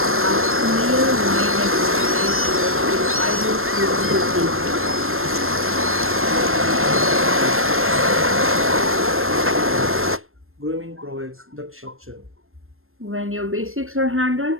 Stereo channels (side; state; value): left; late; 0.61 ms